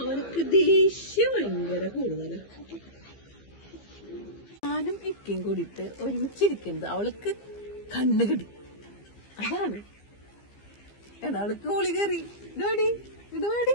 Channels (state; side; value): late; right; 15 ms